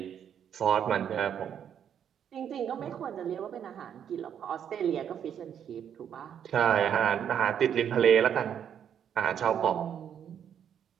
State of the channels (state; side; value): quieter; left; 8.8 dB